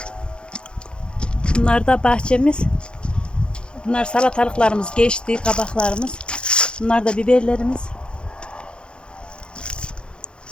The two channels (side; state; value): right; late; 0.052 ms